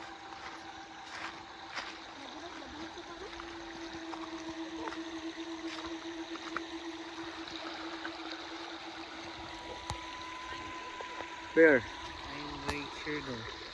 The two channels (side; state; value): both; identical; correlation 1.00